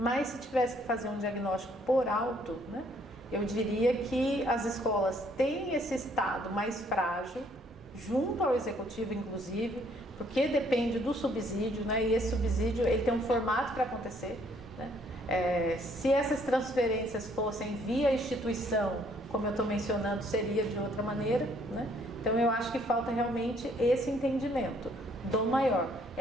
se tivesse que fazer um diagnóstico por alto, né, eu diria que as escolas têm esse estado mais frágil, junto ao executivo inclusive, porque depende do subsídio, né, e esse subsídio ele tem um formato para acontecer, né? Se essas transferências fossem via instituição, como eu estou mencionando, seria de outra maneira, né? Então eu acho que falta realmente esse entendimento do maior.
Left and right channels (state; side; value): normal; both; correlation 0.65